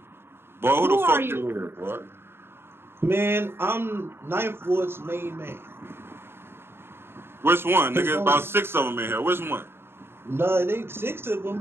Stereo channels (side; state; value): left; late; 0.11 ms